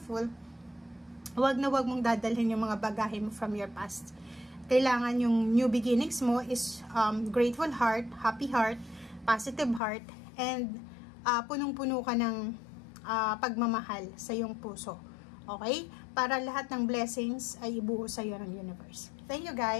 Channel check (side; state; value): right; drops out; at 9.8 s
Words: wag mong dadalhin yung mga bagahe mo from your past. Kailangan yung new beginnings mo is grateful heart, happy heart, positive heart, and punong-puno ka ng pagmamahal sa iyong puso. Okay? Para lahat ng blessings ay ibuo sa iyo ng universe. Thank you